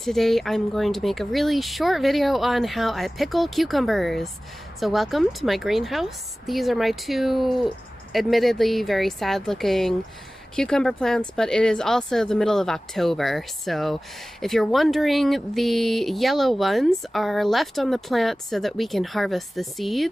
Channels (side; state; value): both; normal; correlation 0.97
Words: I'm going to make a really short video on how I pickle cucumbers. So welcome to my greenhouse. These are my two admittedly very sad looking cucumber plants, but it is also the middle of October. So if you're wondering, the yellow ones are left on the plant so that we can harvest the